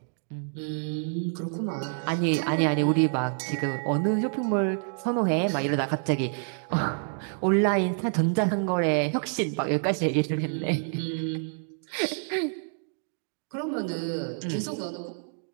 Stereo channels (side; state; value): left; silent; 60 dB below the other